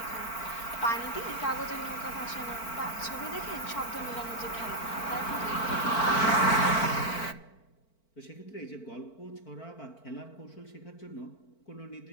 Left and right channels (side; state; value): right; late; 4.5 ms